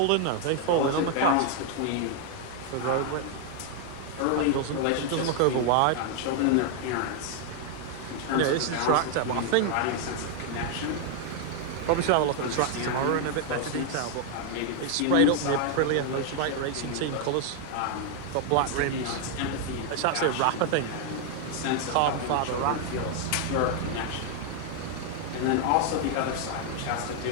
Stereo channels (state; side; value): different; both; correlation 0.00